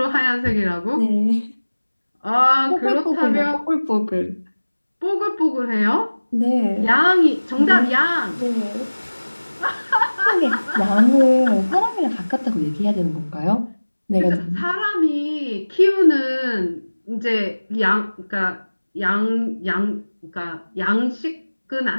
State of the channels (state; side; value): inverted; both; correlation -1.00